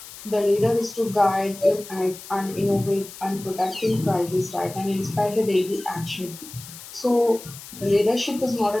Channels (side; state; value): left; noise; hiss, 15 dB below the sound